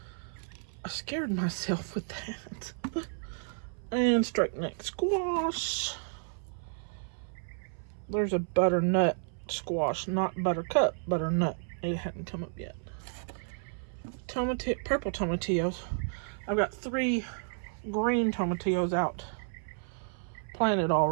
I scared myself with that. And straight neck squash. There's a butternut squash, not buttercup, butternut It hadn't come up yet. Purple tomatillos. I've got 3 green tomatillos out planted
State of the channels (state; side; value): silent; left; 57 dB below the other